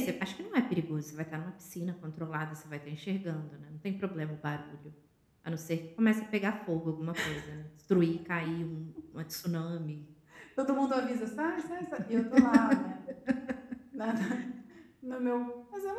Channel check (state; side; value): identical; both; correlation 1.00